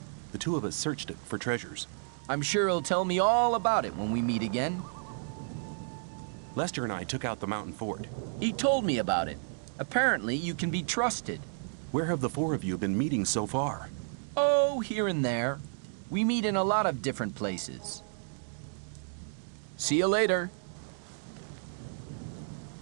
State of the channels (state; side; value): silent; left; digital silence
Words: The two of us searched it for treasures. I'm sure he'll tell me all about it when we meet again. Lester and I took out the mountain fort. He told me about it. Apparently, you can be trusted. Where have the four of you been meeting so far? Oh, here and there. We meet in a lot of different places. See you later.